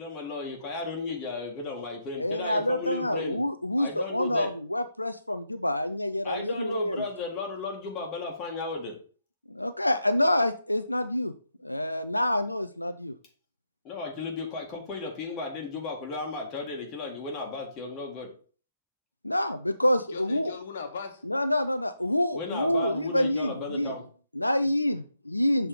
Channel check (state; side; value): inverted; both; correlation -0.83